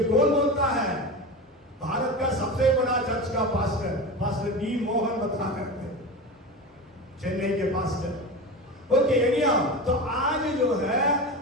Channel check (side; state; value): both; normal; correlation 0.26